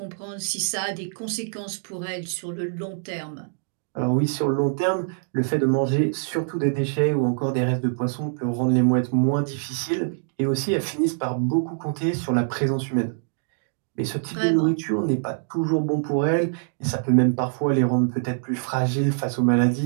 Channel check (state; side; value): silent; left; digital silence